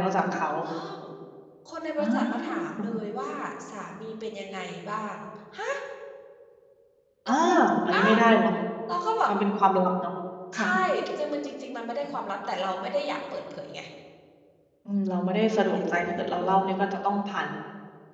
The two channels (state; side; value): identical; both; correlation 1.00